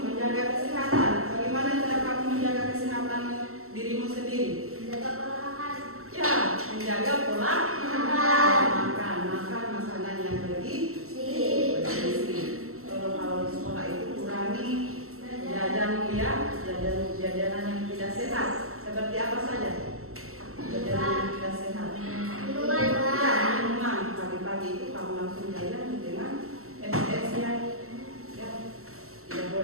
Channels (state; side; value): late; left; 0.63 ms